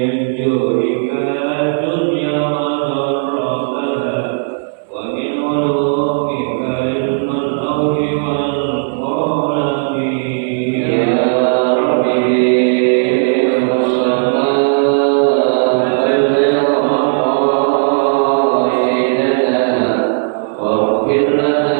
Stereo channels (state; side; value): silent; left; digital silence